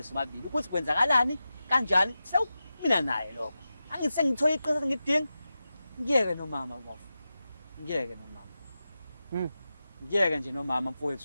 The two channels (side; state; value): both; inverted; correlation -0.93